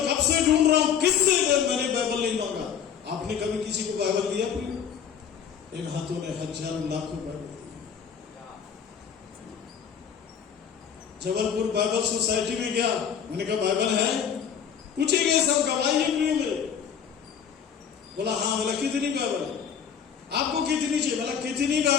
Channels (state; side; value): quieter; right; 7.9 dB